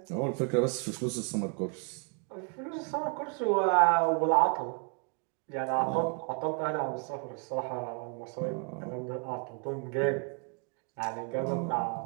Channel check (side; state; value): left; quieter; 37.8 dB